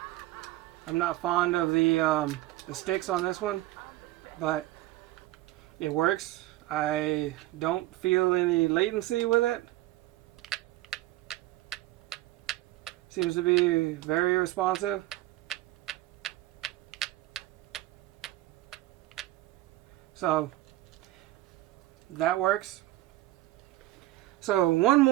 I'm not fond of the sticks on this one, but it works. I don't feel any latency with it. Seems to be very responsive. So that works. So one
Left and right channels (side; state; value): left; quieter; 16.8 dB